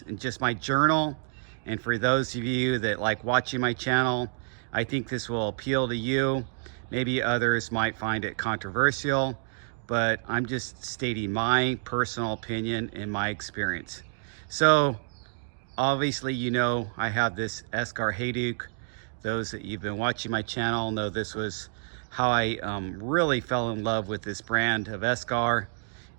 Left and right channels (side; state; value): left; silent; digital silence